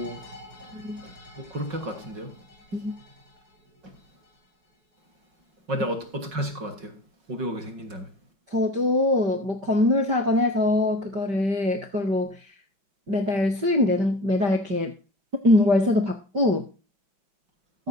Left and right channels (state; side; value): late; left; 5.4 ms